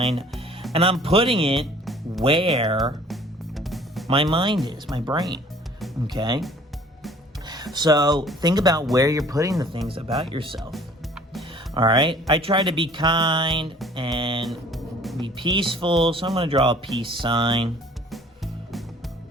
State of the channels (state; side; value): normal; both; correlation 0.52